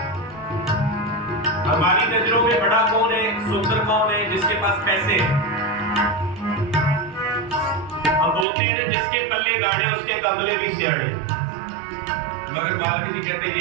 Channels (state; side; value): drops out; left; at 8.5 s